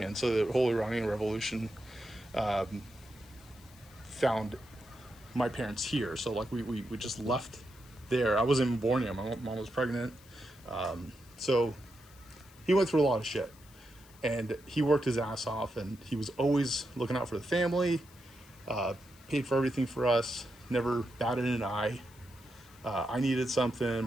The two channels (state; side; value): noise; left; hiss, 25 dB below the sound